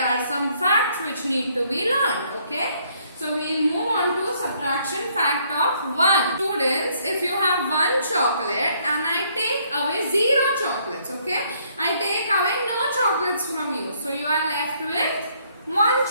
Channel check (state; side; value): inverted; both; correlation -0.67